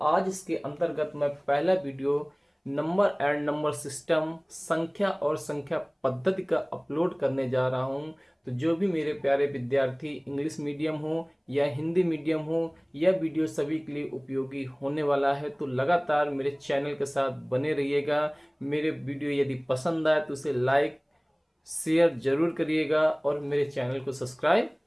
आज इसके अंतर्गत मैं पहला video number and number system, संख्या और संख्या पद्धति का अपलोड करने जा रहा हूं। तो जो भी मेरे प्यारे विद्यार्थी इंग्लिश मीडियम हो या हिंदी मीडियम हो, यह वीडियो सभी के लिए उपयोगी होने वाला है। तो लगातार मेरे चैनल के साथ बने रहिएगा। मेरे वीडियो यदि पसंद आए तो उसे लाइक शेयर जरूर करिएगा और मेरे चैनल को सब्सक्राइब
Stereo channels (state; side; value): identical; both; correlation 1.00